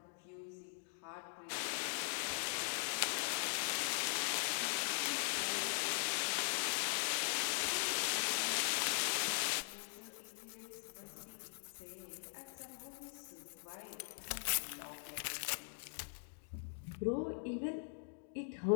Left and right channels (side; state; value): right; silent; digital silence